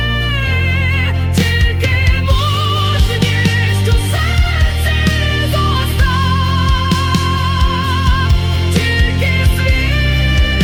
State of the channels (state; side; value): identical; both; correlation 1.00